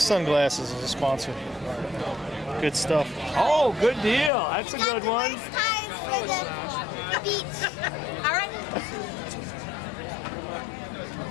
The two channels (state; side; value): drops out; right; at 4.3 s